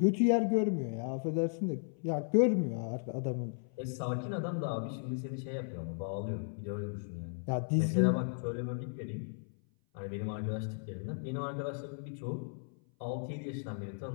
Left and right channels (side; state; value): right; silent; 54 dB below the other